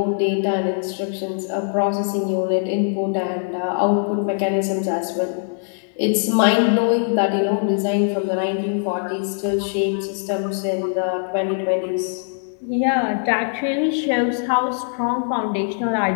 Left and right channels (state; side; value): silent; right; digital silence